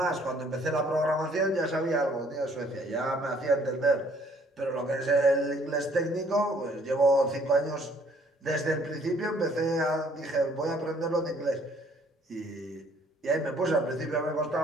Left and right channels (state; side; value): normal; both; correlation 0.61